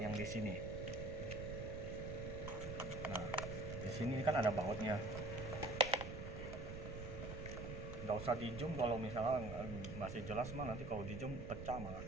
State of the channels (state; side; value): noise; right; rumble, 7 dB below the sound